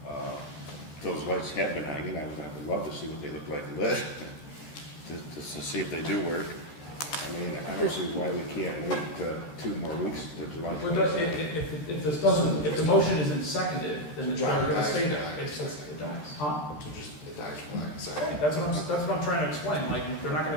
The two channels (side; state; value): right; late; 13 ms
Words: Those lights have been hanging, I would love to see what they look like lit, to see if they do work. I mean, I don't see why we can't wait 2 more weeks to July Well, 26th. if the motion isn't seconded, then it's never gonna stay there. It's just, it dies. Huh? So just, it dies for lack of second. Okay, that's what I'm trying to explain, like, they're not